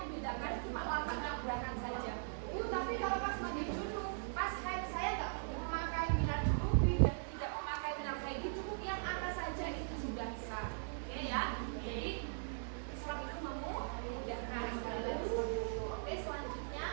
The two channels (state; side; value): silent; left; digital silence